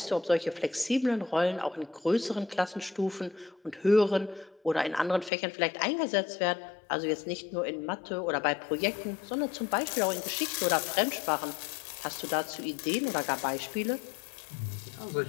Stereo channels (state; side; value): drops out; right; at 5.3 s